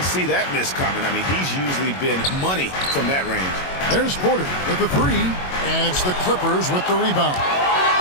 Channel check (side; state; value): right; late; 22 ms